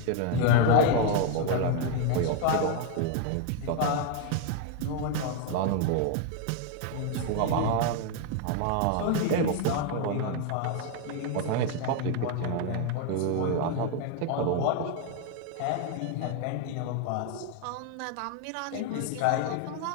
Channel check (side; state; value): both; different; correlation 0.00